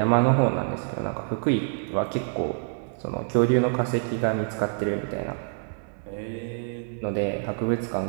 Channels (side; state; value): left; silent; digital silence